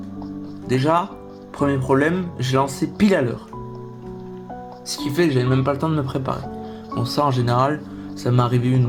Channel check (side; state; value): both; identical; correlation 1.00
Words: Déjà, premier problème, j'ai lancé pile à l'heure. Ce qui fait que j'avais même pas le temps de me préparer. Bon, ça en général, ça m'est arrivé une ou